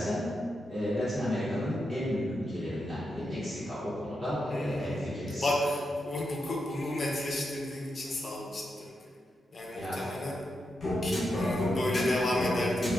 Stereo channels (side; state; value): both; normal; correlation 0.85